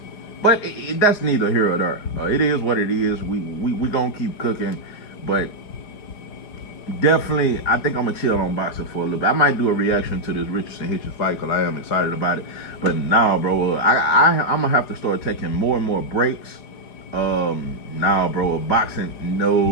But that's neither here or there. It is what it is. We gonna keep cooking, but definitely, I think I'm gonna chill on boxing for a little bit. I might do a reaction to this Richardson Hitchens fight because I am excited about it. But now, bro, I'm gonna have to start taking more and more breaks. Now, bro, boxing,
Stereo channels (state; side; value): late; right; 4.9 ms